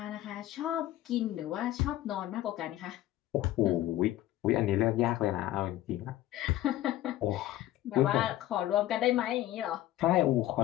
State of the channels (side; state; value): right; quieter; 14.4 dB